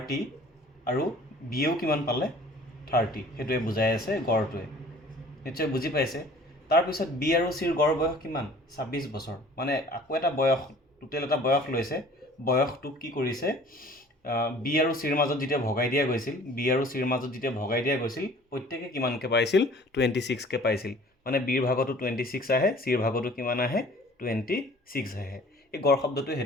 আৰু বিয়েও কিমান পালে 30, সেইটোৱে বুজাই আছে গড়টোৱে। নিশ্চয় বুজি পাইছে। তাৰপিছত বি আৰু চিৰ গড় বয়স কিমান 26 বছৰ, মানে আকৌ এটা বয়স টোটেল এটা বয়স লৈছে। বয়সটোক কি কৰিছে, বি আৰু চিৰ মাজত যেতিয়া ভগাই দিয়া গৈছিল প্ৰত্যেকে কিমানকৈ পাইছিল 26কৈ পাইছিল। মানে বিৰ ভাগতো 26 আহে, চিৰ ভাগতো কিমান আহে 26 আহে। এই গড় শব্দটোৱে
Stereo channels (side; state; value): both; normal; correlation 0.49